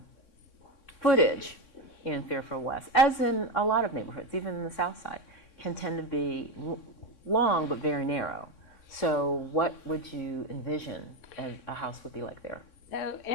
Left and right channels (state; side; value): late; right; 3.6 ms